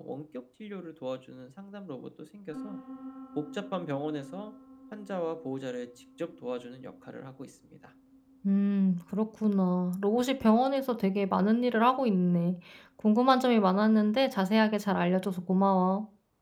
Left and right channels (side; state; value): both; identical; correlation 1.00